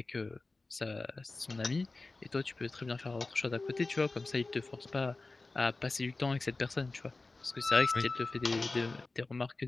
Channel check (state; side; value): quieter; right; 3.4 dB